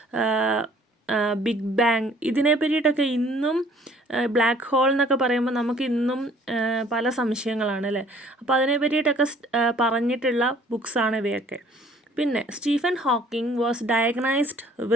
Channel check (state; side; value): normal; both; correlation 0.56